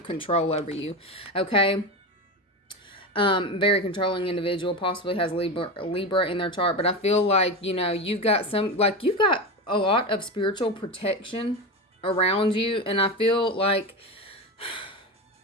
control over you. Okay. Very controlling individual, possibly has Libra in their chart, but I feel like, you've got a lot of spiritual protection around you. And I feel like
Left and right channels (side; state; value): both; normal; correlation 0.20